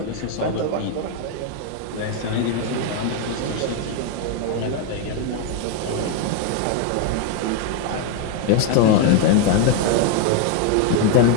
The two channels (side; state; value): both; different; correlation 0.01